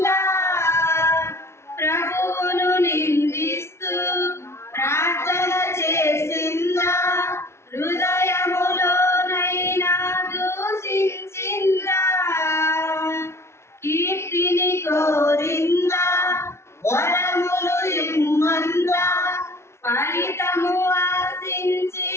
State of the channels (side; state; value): right; late; 0.13 ms